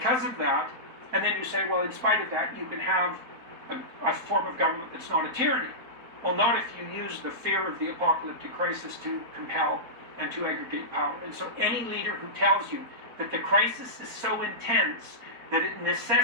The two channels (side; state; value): left; late; 4.2 ms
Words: of that, and then you say, well, in spite of that, you can have a form of government that's not a tyranny. Well, not if you use the fear of the apocalyptic crisis to compel and to aggregate power. And so any leader who tells you that the crisis is so intense that it